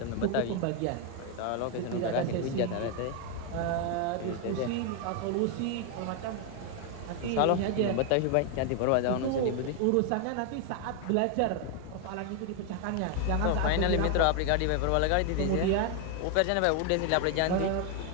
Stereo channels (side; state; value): both; different; correlation 0.01